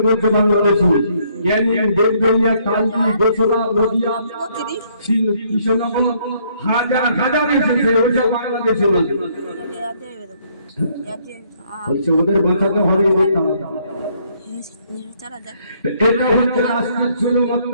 বলছে বাংলাদেশে ক্যানিং, দেবগঞ্জিয়া, কালকি, গোসরা, নদিয়া, কৃষ্ণনগর হাজার হাজার এসেছে, ওইসব বাংলাদেশে বলছে ওদের বাঁচাতে হবে। এটা হচ্ছে রাষ্ট্রের জুলুম,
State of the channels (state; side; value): inverted; both; correlation -0.67